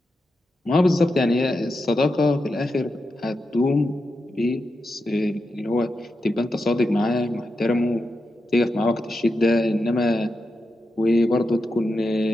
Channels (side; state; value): both; normal; correlation 0.88